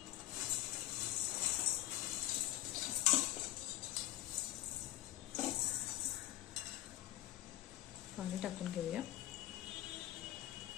पाणी टाकून घेऊया।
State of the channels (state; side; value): quieter; right; 15.0 dB